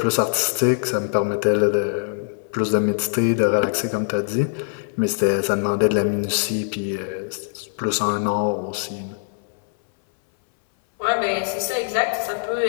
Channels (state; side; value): silent; right; 61 dB below the other